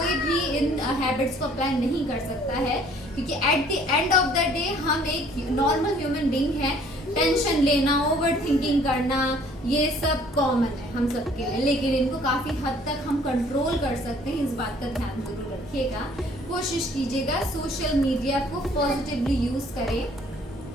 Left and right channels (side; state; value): both; normal; correlation 0.57